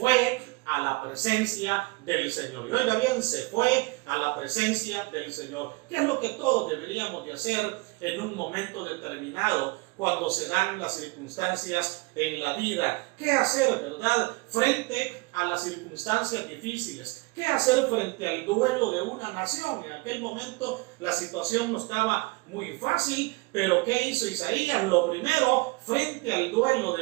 a la presencia del Señor. Y oiga bien, se fue a la presencia del Señor. ¿Qué es lo que todos deberíamos de hacer en un momento determinado cuando se dan las circunstancias en la vida? ¿Qué hacer, verdad, frente a las circunstancias difíciles? ¿Qué hacer frente al duelo de una nación? En aquel momento la situación no estaba muy fácil, pero ¿qué hizo Isaías? Lo primero, frente al duelo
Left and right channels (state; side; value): quieter; left; 26.0 dB